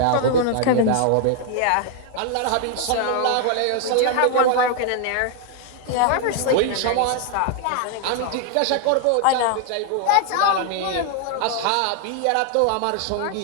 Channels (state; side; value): different; both; correlation 0.00